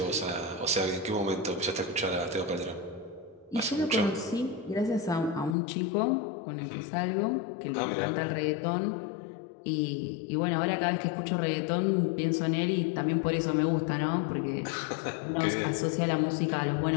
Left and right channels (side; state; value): right; drops out; at 5.6 s